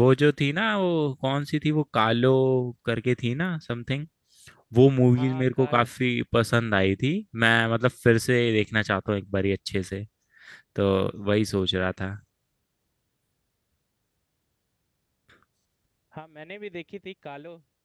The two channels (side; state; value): both; identical; correlation 1.00